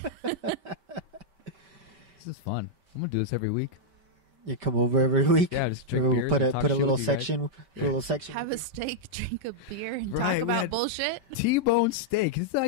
This is fun. I'm gonna do this every week. You come over every week. Yeah, just drink beers. Put and a talk put a shit little with you guys. section. Put a little section. Have a steak, drink a beer, and Right, talk we about had- bullshit. T-bone steak. This is how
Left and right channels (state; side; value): late; left; 5.2 ms